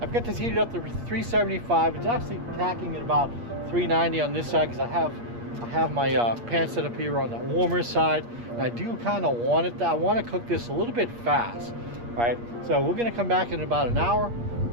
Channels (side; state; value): left; late; 8.5 ms